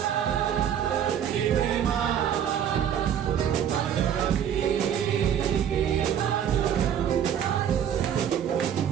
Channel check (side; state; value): left; quieter; 9.2 dB